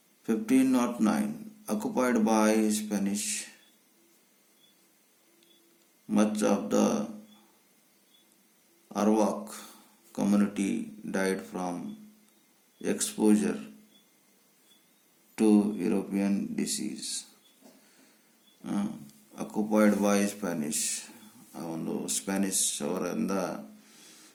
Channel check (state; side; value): identical; both; correlation 1.00